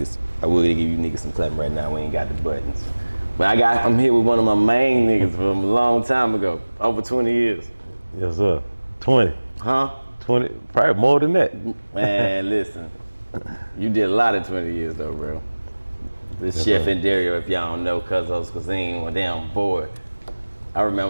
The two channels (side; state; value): both; inverted; correlation -1.00